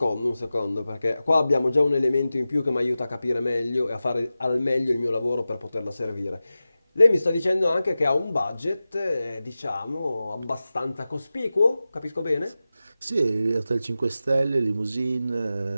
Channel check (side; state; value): both; inverted; correlation -0.95